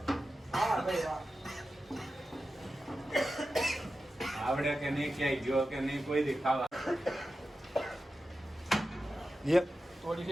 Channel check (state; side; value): normal; both; correlation 0.92